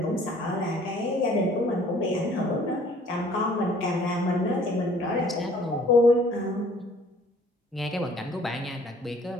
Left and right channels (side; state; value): both; normal; correlation 0.56